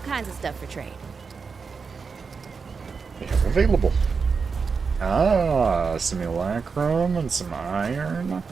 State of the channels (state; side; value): quieter; left; 5.2 dB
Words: of stuff for trade. We have available. Ah, simulacrum and some iron.